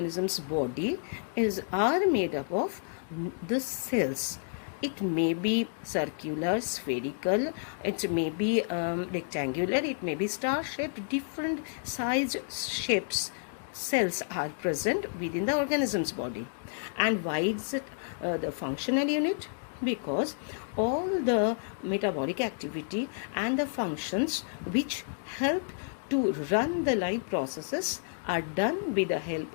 body are made up of the cells. It may be circular, spherical, it may be rectangular, it may be star-shaped, different size shapes. Cells are present within the organism's body. And why is it the functional unit? Because all the metabolic activity and the functions which help to run the life processes are done with the help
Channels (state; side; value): silent; right; digital silence